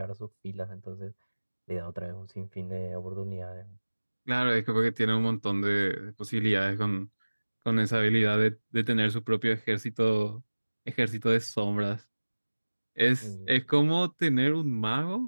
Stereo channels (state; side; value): inverted; both; correlation -1.00